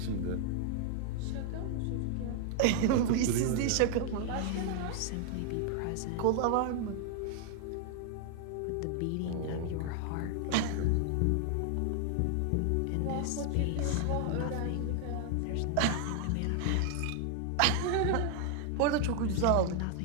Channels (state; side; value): different; both; correlation 0.00